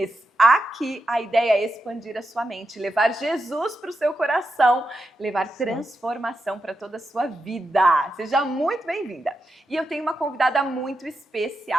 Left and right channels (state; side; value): normal; both; correlation 0.87